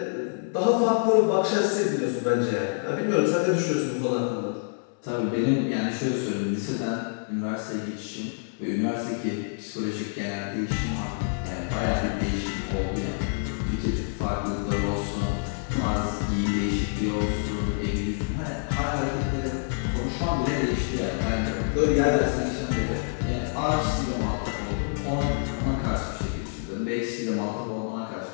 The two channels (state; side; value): silent; right; 60 dB below the other